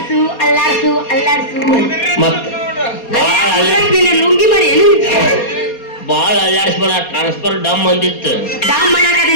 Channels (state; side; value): late; right; 4.2 ms